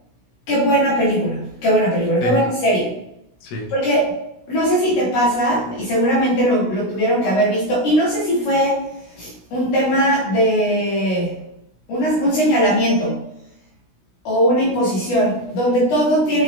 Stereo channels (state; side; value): late; right; 16 ms